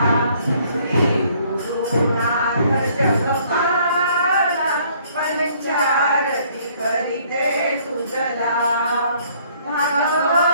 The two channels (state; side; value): inverted; both; correlation -0.62